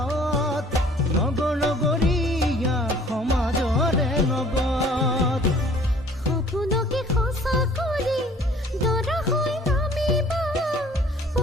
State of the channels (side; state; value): both; normal; correlation 0.54